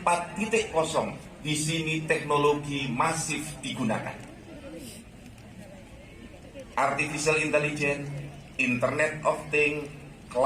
di sini teknologi masif digunakan. Artificial intelligence, Internet of Things,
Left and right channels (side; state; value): both; identical; correlation 1.00